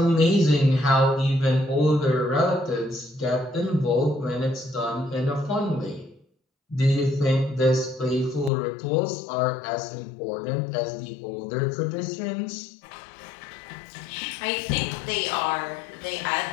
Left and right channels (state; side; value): drops out; right; at 8.5 s